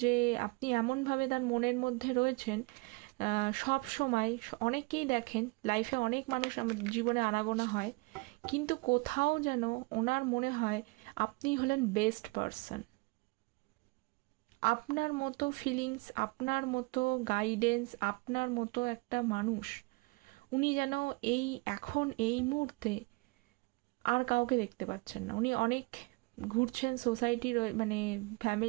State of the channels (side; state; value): left; quieter; 27.4 dB